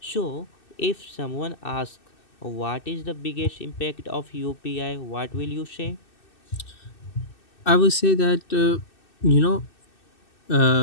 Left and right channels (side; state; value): right; late; 2.6 ms